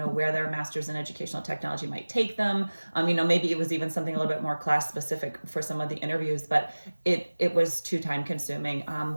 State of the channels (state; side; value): inverted; both; correlation -1.00